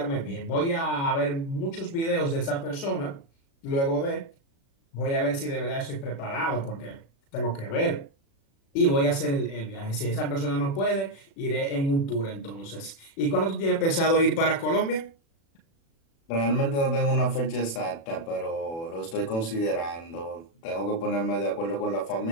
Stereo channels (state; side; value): late; right; 36 ms